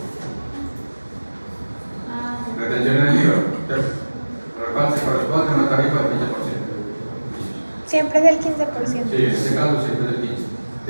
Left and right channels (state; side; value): inverted; both; correlation -1.00